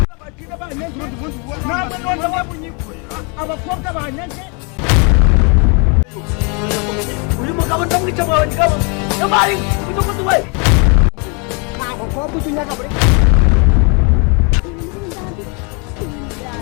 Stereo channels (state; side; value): quieter; right; 34.0 dB